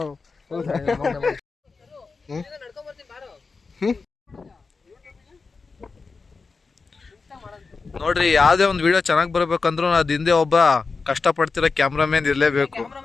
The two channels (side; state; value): right; quieter; 4.4 dB